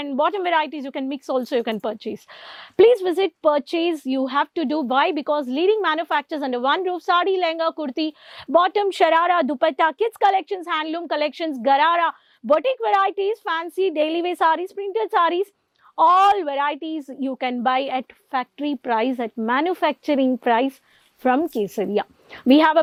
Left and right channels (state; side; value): identical; both; correlation 1.00